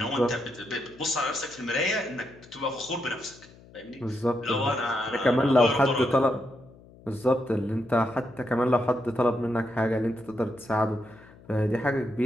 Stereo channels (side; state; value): left; noise; hum, 23 dB below the sound